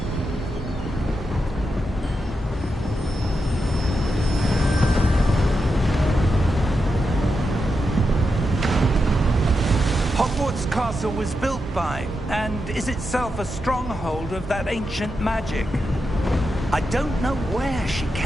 Hogwarts Castle was built by, and is itself a stronghold of that ancient magic. I don't know where she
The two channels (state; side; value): normal; both; correlation 0.87